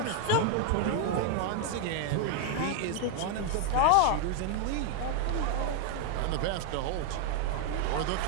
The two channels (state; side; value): different; both; correlation 0.00